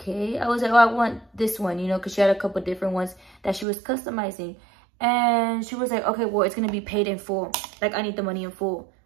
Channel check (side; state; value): left; drops out; at 3.7 s